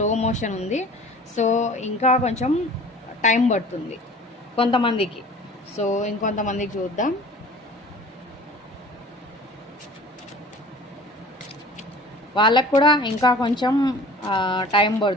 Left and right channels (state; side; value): normal; both; correlation 0.45